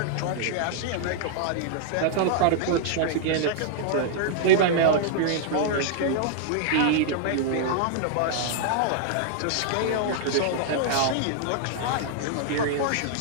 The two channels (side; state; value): both; different; correlation -0.01